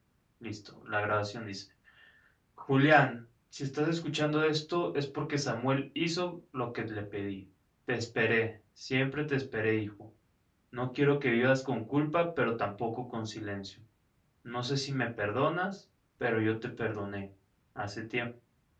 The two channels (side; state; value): both; identical; correlation 1.00